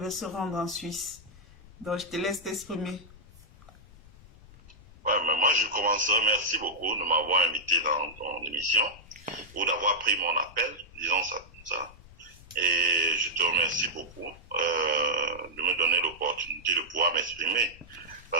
se rendre en Suisse. Donc, je te laisse t'exprimer. Ouais, mais moi, je commencerai. Merci beaucoup de m'avoir invité dans ton émission ou d'avoir pris mon appel, disons ça comme ça. Et je te remercie beaucoup de me donner l'opportunité de pouvoir m'exprimer.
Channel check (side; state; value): left; noise; rumble, 22 dB below the sound